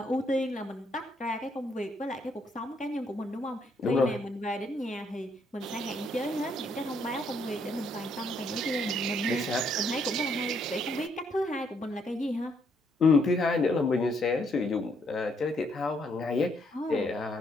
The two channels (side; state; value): both; normal; correlation 0.72